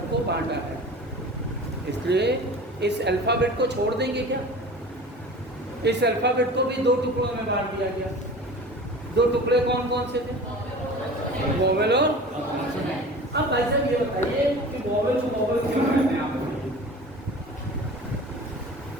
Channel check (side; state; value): both; normal; correlation 0.38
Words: बांटा है। इसलिए इस अल्फाबेट को छोड़ देंगे क्या? इस अल्फाबेट को भी दो टुकड़ों में बांट दिया गया। दो टुकड़े कौन कौन से थे? वोवेल और। अब भाई साहब ये बताइए कि वोवेल को वोवेल क्यों कहते हैं आप?